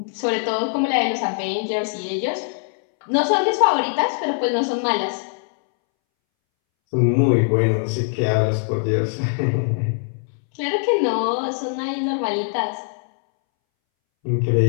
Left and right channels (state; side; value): silent; right; 63 dB below the other